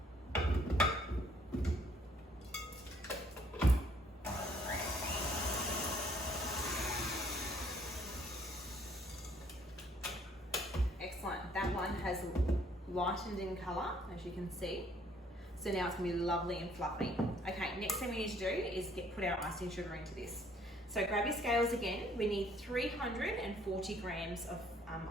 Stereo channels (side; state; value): both; normal; correlation 0.63